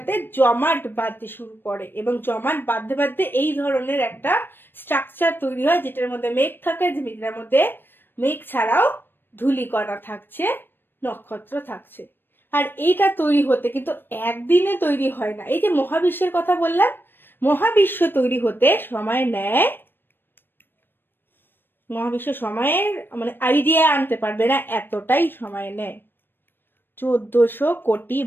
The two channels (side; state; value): right; late; 0.097 ms